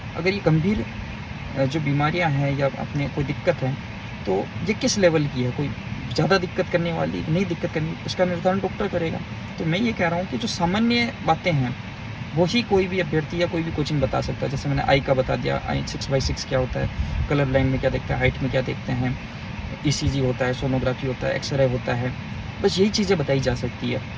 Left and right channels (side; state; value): both; identical; correlation 1.00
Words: अगर ये गंभीर जो बीमारियां हैं या अपने कोई दिक्कत है, तो ये किस लेवल की है, कोई ज़्यादा दिक्कत करने वाली नहीं दिक्कत करनी, उसका निर्धारण डॉक्टर करेगा। तो मैं ये कह रहा हूँ कि जो सामान्य बातें हैं वही कोई भी अभ्यर्थी या कोई भी कोचिंग बता सकता है। जैसे मैंने आई का बता दिया, आई 6/6 क्या होता है, कलर ब्लाइंड में क्या देखते हैं, हाइट में क्या देखते हैं, ईसीजी होता है, सोनोग्राफी होता है, एक्सरे होता है, बस यही चीज़ें बताई जा सकती है।